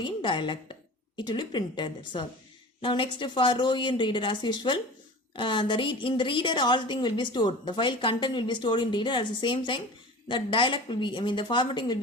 in dialect. It will be printed. That's all. Now next for row in reader, as usual, in the reader all thing will be stored. The file content will be stored in reader. At the same time, the dialect will be, the formatting will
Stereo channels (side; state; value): both; normal; correlation 0.37